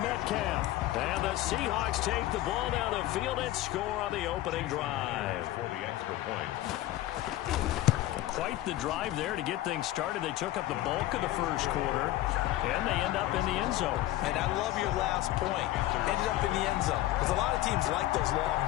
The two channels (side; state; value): right; quieter; 15.3 dB